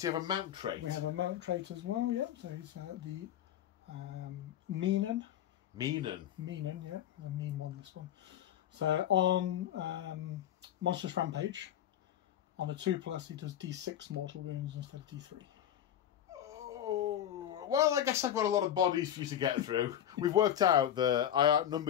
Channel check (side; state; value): right; quieter; 10.6 dB